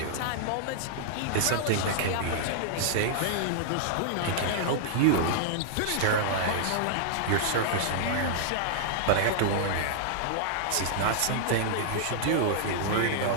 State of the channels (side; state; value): both; different; correlation -0.01